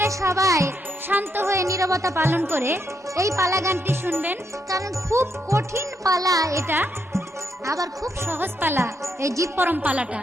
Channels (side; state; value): both; normal; correlation 0.79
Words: সবাই শান্ত হয়ে নীরবতা পালন করে এই পালা গানটি শুনবেন, কারণ খুব কঠিন পালা এটা, আবার খুব সহজ পালা এই জীব পরম পালাটা।